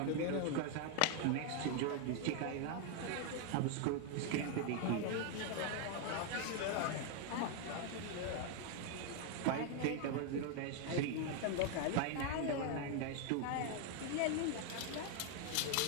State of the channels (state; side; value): different; both; correlation 0.01